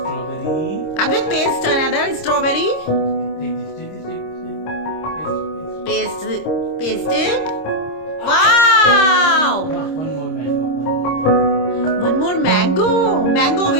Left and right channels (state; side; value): late; right; 26 ms